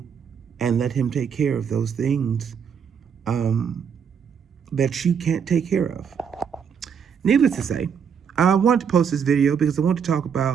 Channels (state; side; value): quieter; left; 7.2 dB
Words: and let Him take care of those things that you can't take care of. Needless to say, I wanted to post this video because I want to talk